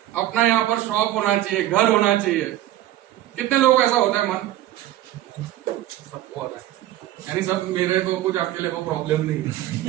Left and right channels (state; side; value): quieter; left; 14.1 dB